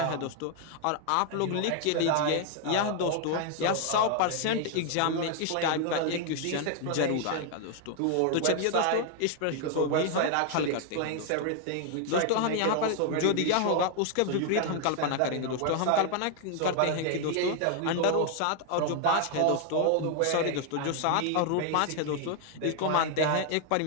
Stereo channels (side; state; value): both; different; correlation 0.00